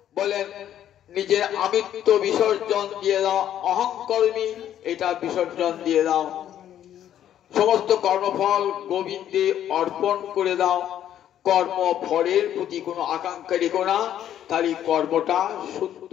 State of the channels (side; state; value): right; quieter; 10.9 dB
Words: বলেন নিজের আমিত্ব বিসর্জন দিয়ে দাও, অহংকর্মী এটা বিসর্জন দিয়ে দাও, সমস্ত কর্মফল গোবিন্দে অর্পণ করে দাও। কর্ম ফলের প্রতি কোনো আকাঙ্ক্ষা রেখো না, তাহলে কর্মটা শুদ্ধ